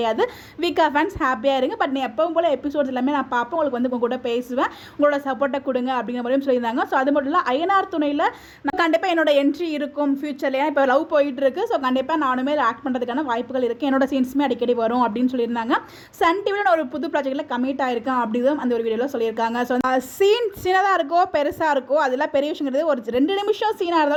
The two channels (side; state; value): both; identical; correlation 1.00